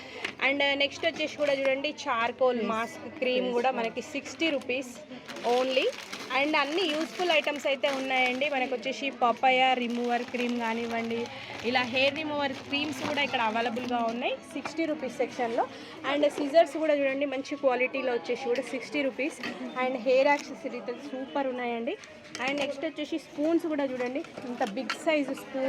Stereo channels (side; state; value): both; identical; correlation 1.00